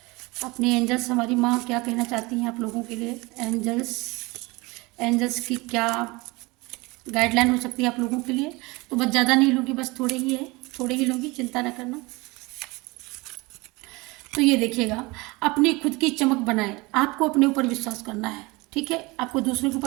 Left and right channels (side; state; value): left; quieter; 24.1 dB